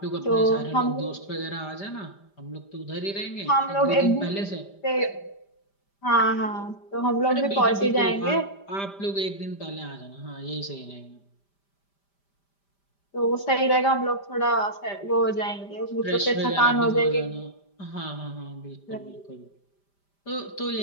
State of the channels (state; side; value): late; right; 5.1 ms